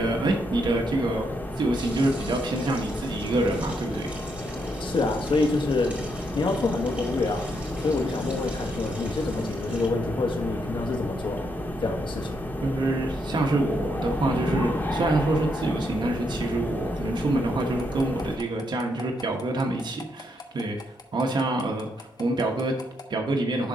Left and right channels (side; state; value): both; normal; correlation 0.77